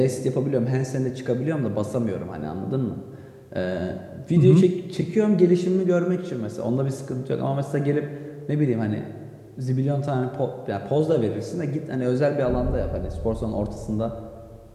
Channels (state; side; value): identical; both; correlation 1.00